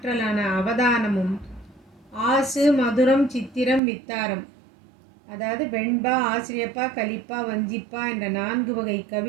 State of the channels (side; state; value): left; drops out; at 3.8 s